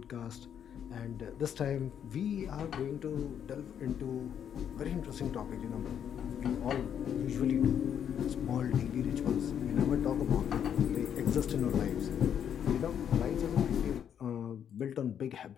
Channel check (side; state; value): right; quieter; 8.8 dB